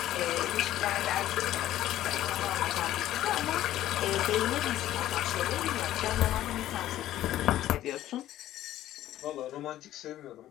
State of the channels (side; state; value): right; quieter; 13.4 dB